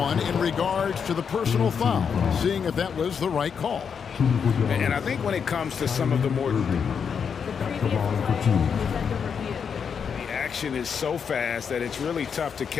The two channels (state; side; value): quieter; right; 6.7 dB